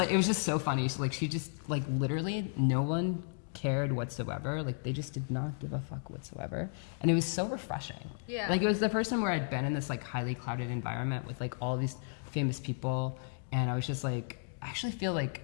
it was just so funny. She just, like, literally no one cared whatsoever. Like, they just did not give a fuck whatsoever. And it was so refreshing. Yeah. Like, it was the first time where I'd been in this, like, highly clouded environment with, like, all these famous people. And I was just like, I actually feel like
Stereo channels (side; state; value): right; silent; digital silence